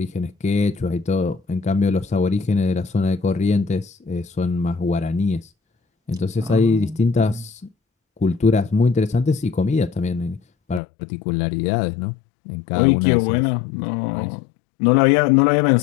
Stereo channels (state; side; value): drops out; right; at 10.8 s